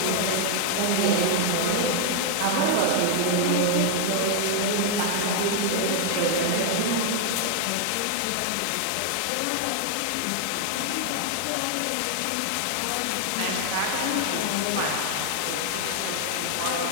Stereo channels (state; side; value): different; both; correlation 0.00